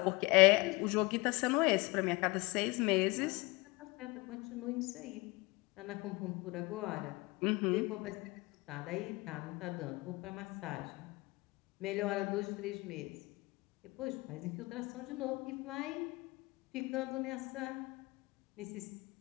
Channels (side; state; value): right; quieter; 24.1 dB